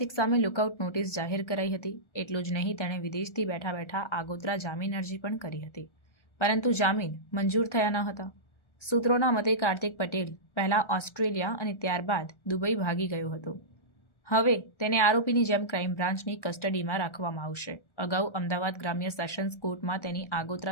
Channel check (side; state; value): right; late; 1.3 ms